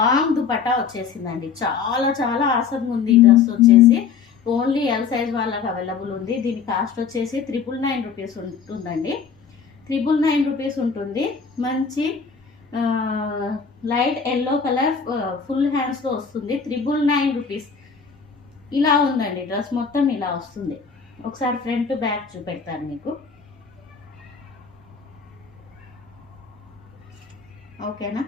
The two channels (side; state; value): right; quieter; 6.1 dB